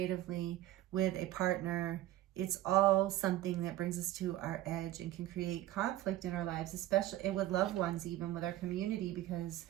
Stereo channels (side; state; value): left; quieter; 14.5 dB